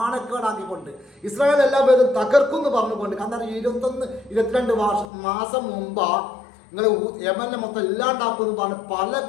ഇസ്രായേൽ എല്ലാ പേരും തകർക്കുമെന്ന് പറഞ്ഞുകൊണ്ട്. കാരണം 21-22 മാസം മുമ്പാ നിങ്ങൾ യമനെ മൊത്തം ഇല്ലാണ്ടാക്കുമെന്ന് പറഞ്ഞ് പല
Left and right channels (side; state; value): right; drops out; at 5.1 s